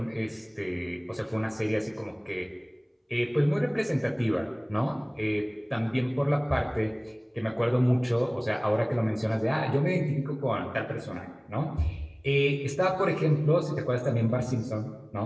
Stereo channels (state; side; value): identical; both; correlation 1.00